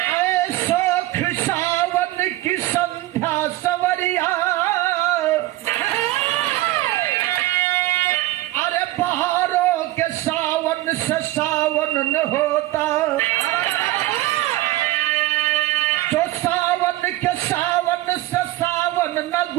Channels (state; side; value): quieter; left; 16.8 dB